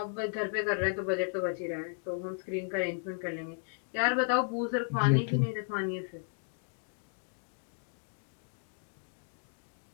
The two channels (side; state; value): right; silent; 55 dB below the other